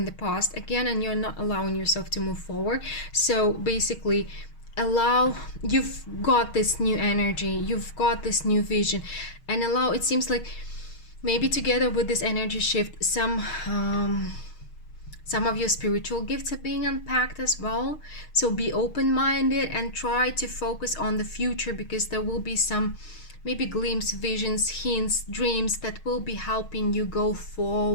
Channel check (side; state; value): right; late; 6.4 ms